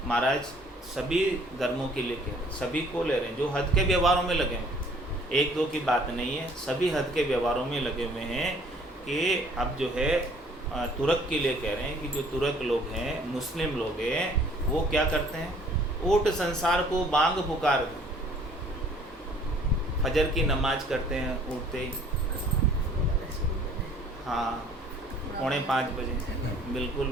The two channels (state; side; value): normal; both; correlation 0.56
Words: महाराज सभी धर्मों के लिए कह रहे हैं, सभी को ले रहे हैं जो हद के व्यवहारों में लगे हैं। एक दो की बात नहीं है, सभी हद के व्यवहारों में लगे हुए हैं। कि अब जो है तुर्क के लिए कह रहे हैं कि जो तुर्क लोग हैं, मुस्लिम लोग हैं, वो क्या करते हैं? ऊट संसार को बांग पुकार दे। फजर की नमाज करते हैं उठते ही, हाँ 4:45 बजे,